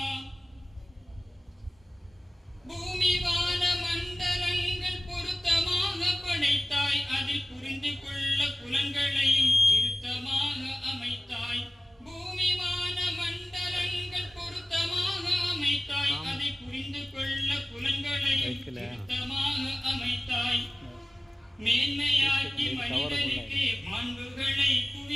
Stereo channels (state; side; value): normal; both; correlation 0.97